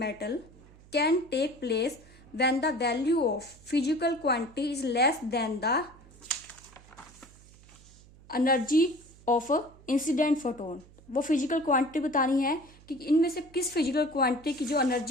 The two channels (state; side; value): noise; right; hum, 24 dB below the sound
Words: can take place when the value of physical quantity is less than the energy of incident photon. वो physical quantity बतानी है कि इनमें से किस physical quantity की जो